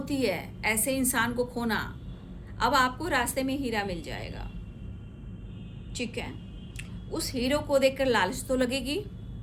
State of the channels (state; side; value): identical; both; correlation 1.00